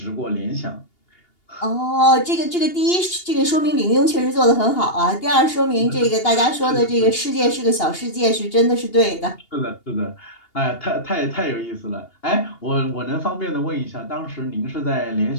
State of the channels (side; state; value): right; late; 2.8 ms